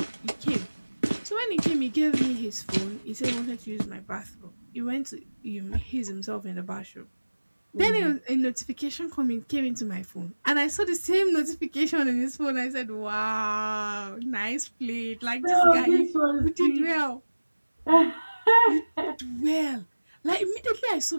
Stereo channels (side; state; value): both; inverted; correlation -1.00